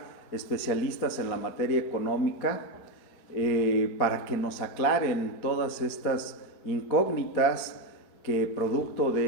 especialistas en la materia económica para que nos aclaren todas estas incógnitas que producto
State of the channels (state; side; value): late; right; 4.3 ms